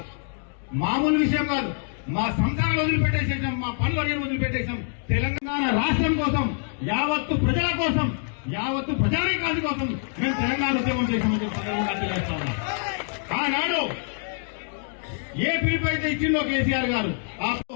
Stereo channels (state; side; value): silent; right; 60 dB below the other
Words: మామూలు విషయం కాదు. మా సంసారాలు వదిలిపెట్టేసేసాం, మా పనులు వదిలిపెట్టేసాం. తెలంగాణ రాష్ట్రం కోసం, యావత్తు ప్రజల కోసం, యావత్తు ప్రజానికాది కోసం మేము తెలంగాణ ఉద్యమం చేశామని చెప్పి ఆనాడు ఏ పిలుపు అయితే ఇచ్చిందో కేసీఆర్ గారు, ఆ